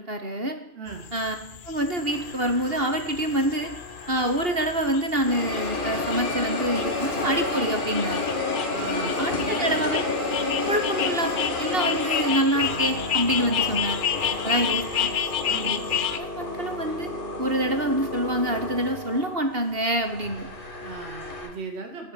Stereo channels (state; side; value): late; left; 2.8 ms